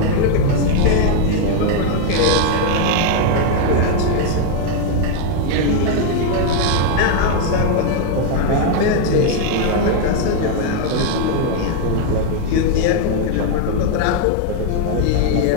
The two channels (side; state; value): both; different; correlation 0.00